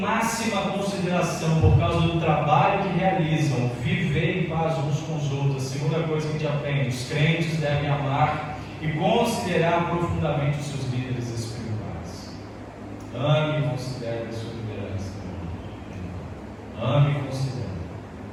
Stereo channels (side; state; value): both; identical; correlation 1.00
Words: consideração por causa do trabalho que realizam, viver em paz uns com os outros. A segunda coisa que a gente aprende, os crentes devem amar e considerar profundamente os seus líderes espirituais. Ame e considere a sua liderança. Ame e considere.